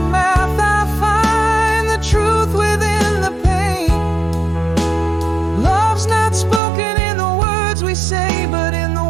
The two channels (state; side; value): drops out; left; at 6.6 s